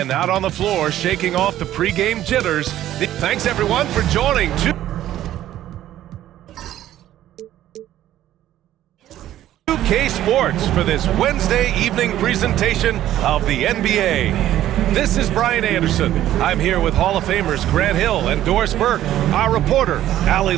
out on the floor, shaking off the pregame jitters. Thanks, everyone, for joining. 2K Sports for this Wednesday evening presentation of the NBA. This is Brian Anderson. I'm here with Hall of Famers Grant Hill and Doris Burke, our reporter, Allie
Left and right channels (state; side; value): quieter; left; 12.9 dB